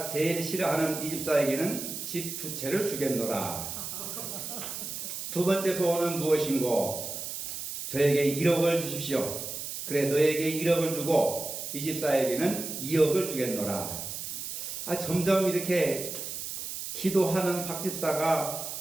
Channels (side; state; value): right; noise; hiss, 6 dB below the sound